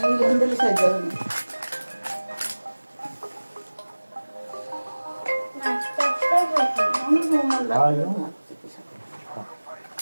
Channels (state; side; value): inverted; both; correlation -1.00